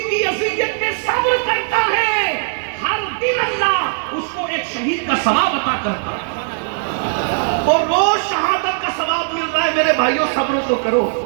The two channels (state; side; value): silent; left; 67 dB below the other